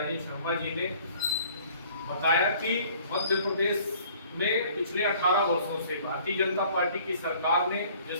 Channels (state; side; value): inverted; both; correlation -0.54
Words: शर्मा जी ने बताया कि मध्य प्रदेश में पिछले 18 वर्षों से भारतीय जनता पार्टी की सरकार ने